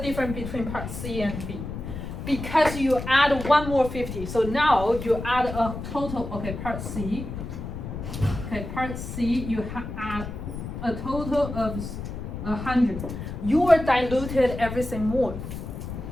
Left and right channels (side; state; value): left; noise; rumble, 7 dB below the sound